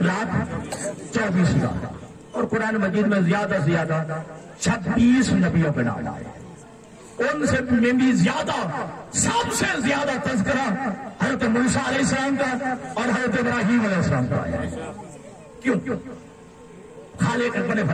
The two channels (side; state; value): both; identical; correlation 1.00